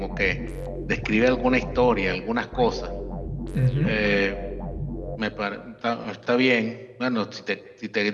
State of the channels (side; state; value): both; identical; correlation 1.00